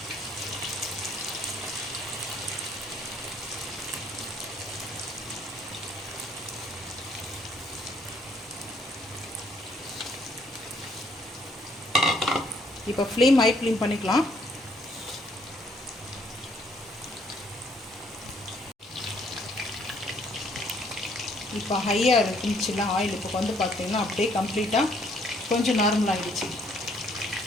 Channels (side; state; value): both; normal; correlation 0.65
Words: இப்போ ஃப்ளேம் ஹை ஃப்ளேம் பண்ணிக்கலாம். இப்போ ஹையாக இருந்துச்சுன்னா ஆயில் இப்போ வந்து பார்த்தீங்கன்னா அப்படியே கம்ப்ளீட்டாக கொஞ்சம் நார்மல் ஆகிடுச்சு.